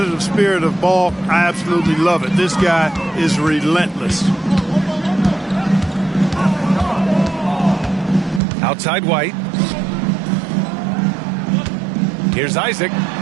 spirit of Ball, I absolutely love it. This guy is relentless. Outside White. Here's Isaac.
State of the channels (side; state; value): left; drops out; at 8.4 s